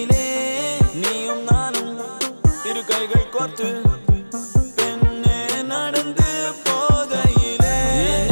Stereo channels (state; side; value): inverted; both; correlation -1.00